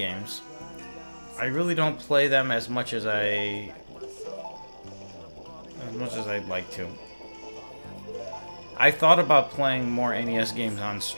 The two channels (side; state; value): both; inverted; correlation -1.00